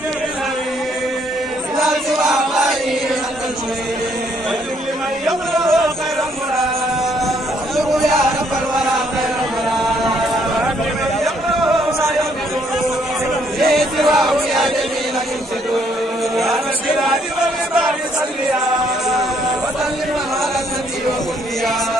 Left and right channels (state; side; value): normal; both; correlation 0.69